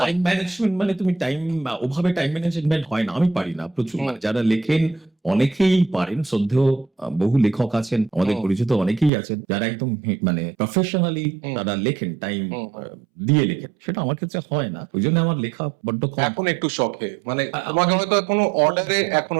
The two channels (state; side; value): drops out; left; at 9.1 s